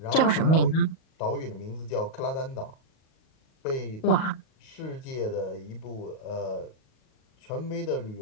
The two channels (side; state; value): right; late; 38 ms